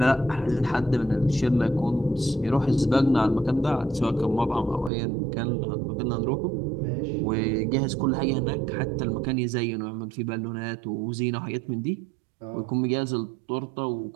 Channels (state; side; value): drops out; left; at 4.9 s